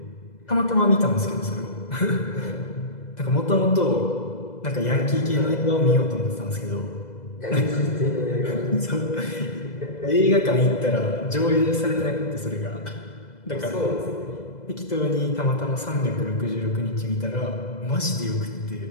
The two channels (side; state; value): right; late; 2.0 ms